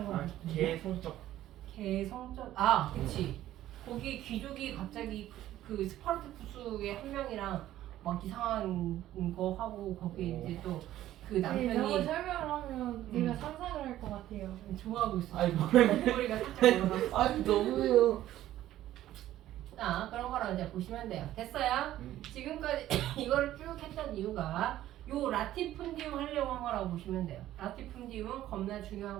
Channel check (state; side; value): quieter; left; 13.5 dB